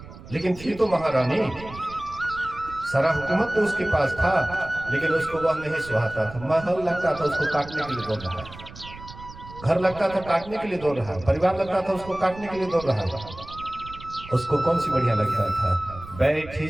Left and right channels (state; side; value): noise; right; rumble, 16 dB below the sound